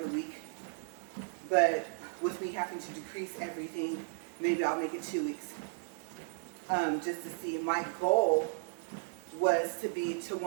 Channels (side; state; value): left; silent; digital silence